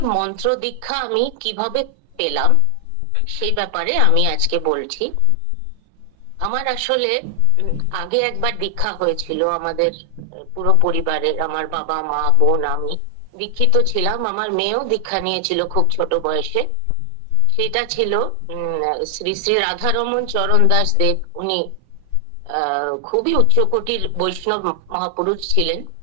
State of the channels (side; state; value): both; different; correlation 0.00